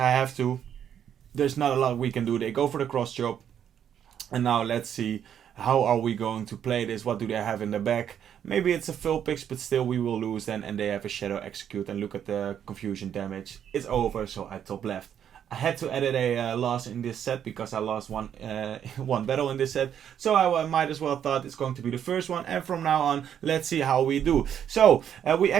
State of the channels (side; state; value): left; quieter; 9.2 dB